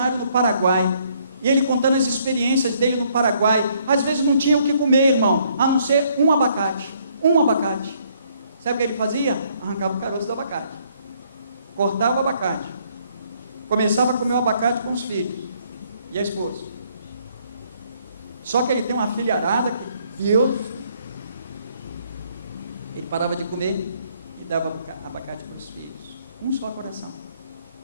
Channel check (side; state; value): both; inverted; correlation -0.67